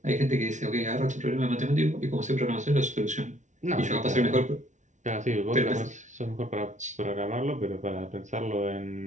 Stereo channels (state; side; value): late; left; 0.36 ms